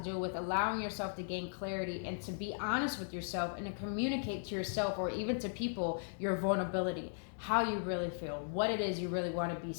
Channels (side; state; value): right; silent; digital silence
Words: with allowing yourself to gain clarity and to be honest with yourself and to communicate to yourself or even to people your vulnerability, how you really feel, what it is you really want to be